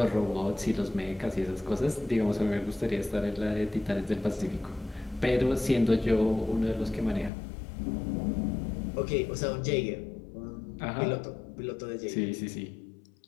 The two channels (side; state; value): right; drops out; at 7.3 s